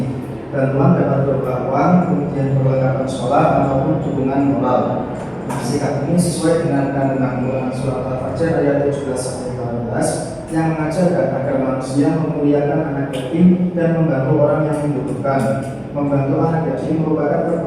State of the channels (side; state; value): both; identical; correlation 1.00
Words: Bantuan dapat berupa uang, kemudian perlengkapan sekolah ataupun dukungan moral. Nah, sikap ini sesuai dengan kandungan Quran surat Al-Fajr ayat 17-18 yang mengajarkan agar manusia memuliakan anak yatim dan membantu orang yang membutuhkan. Membantu anak yatim merupakan